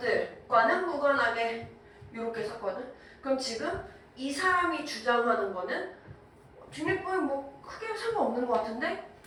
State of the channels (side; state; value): both; identical; correlation 1.00